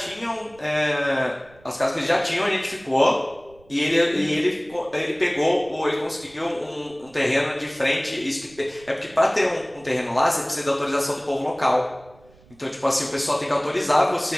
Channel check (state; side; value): noise; right; rumble, 27 dB below the sound